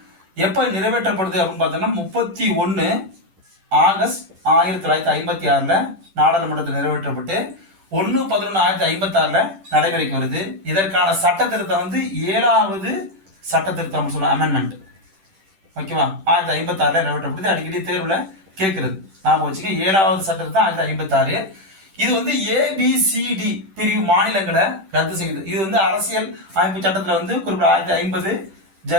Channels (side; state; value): left; late; 10 ms